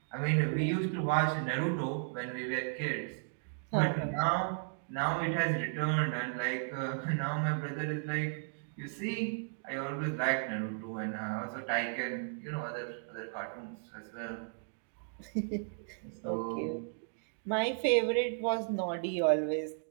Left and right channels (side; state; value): left; silent; digital silence